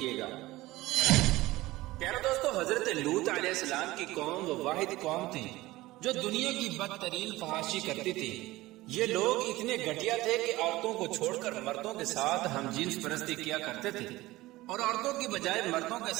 گا۔ پیارا دوستو، حضرت لوط علیہ السلام کی قوم وہ واحد قوم تھی جو دنیا کی بدترین فحاشی کرتی تھی۔ یہ لوگ اتنے گھٹیا تھے کہ عورتوں کو چھوڑ کر مردوں کے ساتھ ہم جنس پرستی کیا کرتے تھے، اور عورتوں کی بجائے مردوں کے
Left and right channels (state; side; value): quieter; left; 18.6 dB